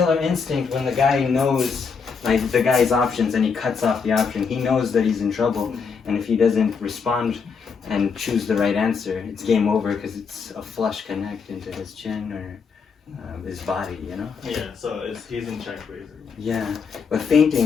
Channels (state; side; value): quieter; right; 5.6 dB